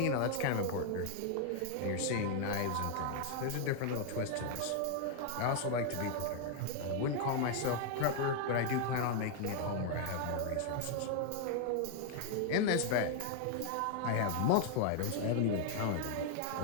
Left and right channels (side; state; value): both; different; correlation 0.00